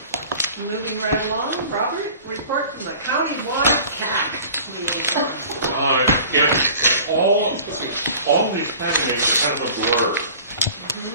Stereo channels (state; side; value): inverted; both; correlation -0.44